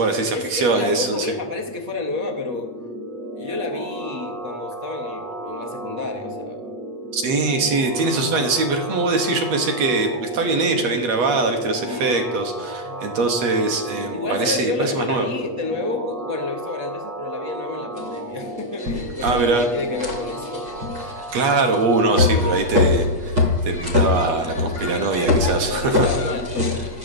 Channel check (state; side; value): late; left; 8.3 ms